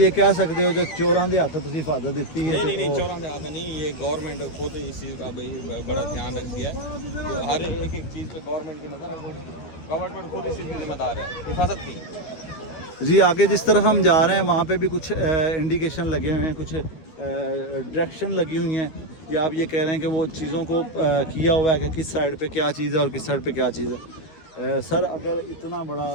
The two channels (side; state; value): right; late; 13 ms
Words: कह सकते हो कि चोरां दे हथ तुम हिफाजत दी है। नहीं चोरां दे हाथ नहीं, ये गवर्नमेंट खुद इस चीज़ का भाई बड़ा ध्यान रखती है। तो हर एक चीज़ पे गवर्नमेंट की नज़र है, गवर्नमेंट खुद इस चीज़ की जिम्मेदार है, हिफाजत की। जी आगे जिस तरफ हम जा रहे हैं वहाँ पे भी कुछ इंडिकेशन लगे हुए हैं, कुछ डायरेक्शन लगी हुई हैं, या आप ये कह रहे हैं कि वो चीज़ों को किया हुआ है कि किस साइड पे क्या चीज़ है और किस साइड पे क्या चीज़ है। सर अगर इतना बड़ा